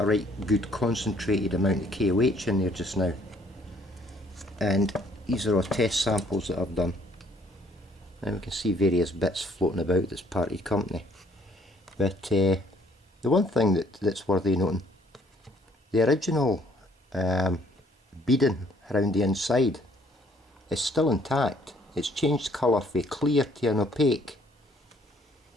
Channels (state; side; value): normal; both; correlation 0.62